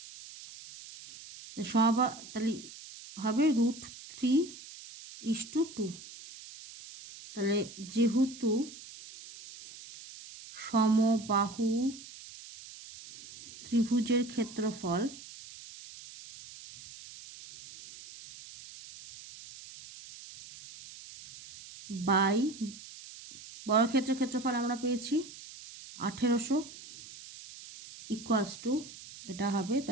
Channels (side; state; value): right; noise; hiss, 16 dB below the sound